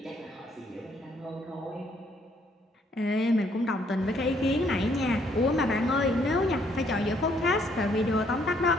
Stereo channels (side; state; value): both; normal; correlation 0.68